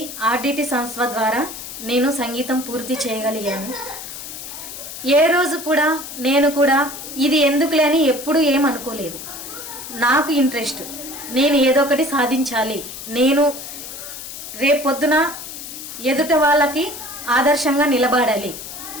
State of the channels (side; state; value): left; noise; hiss, 10 dB below the sound